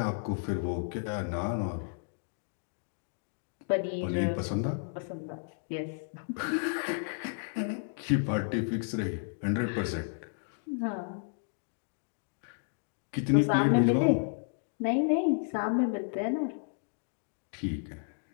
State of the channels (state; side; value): silent; right; digital silence